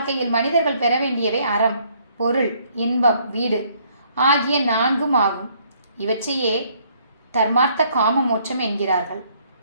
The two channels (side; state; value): both; inverted; correlation -0.65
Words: மனிதர்கள் பெற வேண்டியவை அறம், பொருள், இன்பம், வீடு ஆகிய நான்கும் ஆகும். இவற்றையே தர்மார்த்த காம மோட்சம் என்கிறார்கள்.